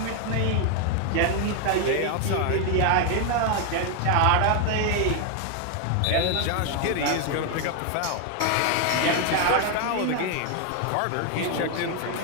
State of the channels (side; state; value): both; different; correlation 0.01